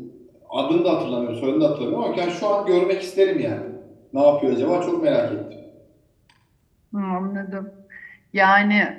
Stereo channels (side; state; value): both; identical; correlation 1.00